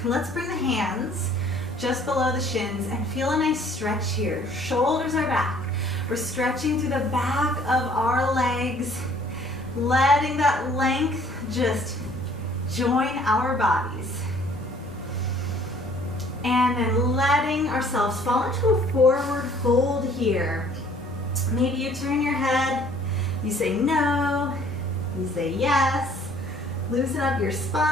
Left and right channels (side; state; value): both; normal; correlation 0.57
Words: Let's bring the hands just below the shins and feel a nice stretch here. Shoulders are back. We're stretching through the back of our legs, letting that length just join our bodies. And then letting ourselves fall into a forward fold here. Maybe you turn your head, you say no, you say yes, loosen up your